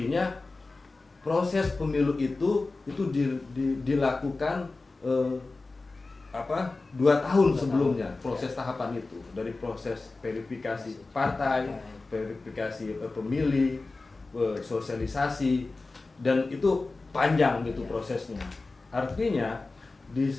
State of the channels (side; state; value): right; quieter; 3.5 dB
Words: proses pemilu itu dilakukan 2 tahun sebelumnya, proses tahapan itu, dari proses verifikasi partai, verifikasi pemilih, sosialisasi, dan itu panjang gitu prosesnya. Artinya